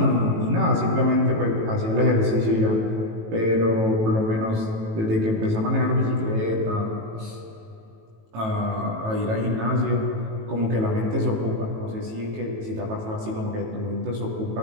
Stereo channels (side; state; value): left; late; 18 ms